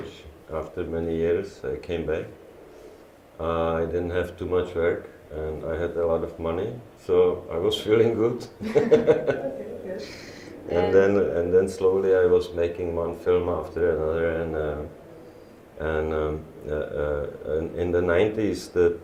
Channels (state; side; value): identical; both; correlation 1.00